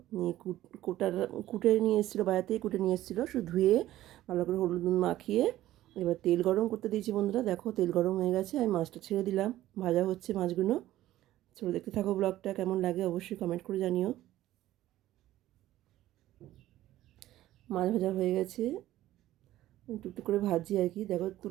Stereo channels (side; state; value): left; quieter; 14.5 dB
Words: নিয়ে কুটে নিয়ে এসেছিলো, বাইরে থেকে কুটে নিয়ে এসেছিলো। শুধু ধুয়ে ভালো করে হলুদ নুন মাখিয়ে এবার তেল গরম করতে দিয়েছি বন্ধুরা। দেখো তেল গরম হয়ে গেছে, আমি মাছটা ছেড়ে দিলাম। ভাজা হচ্ছে মাছগুলো। চলো দেখতে থাকো ব্লগটা, কেমন লাগে অবশ্যই কমেন্ট করে জানিও। মাছ ভাজা হয়ে গেছে, টুকটুক করে ভাজি আর কি। দেখো